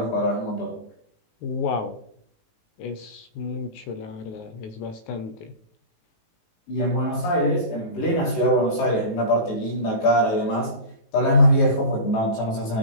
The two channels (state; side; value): late; right; 18 ms